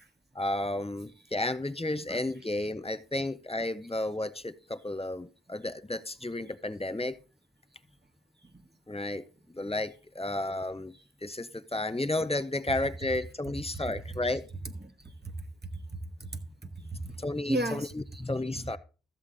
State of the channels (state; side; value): normal; both; correlation 0.67